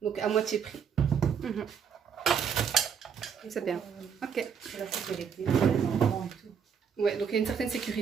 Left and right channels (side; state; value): left; quieter; 7.2 dB